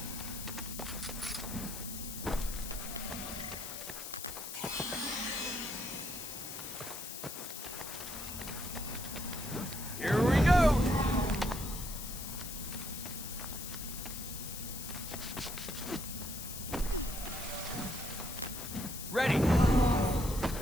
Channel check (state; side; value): noise; left; hiss, 8 dB below the sound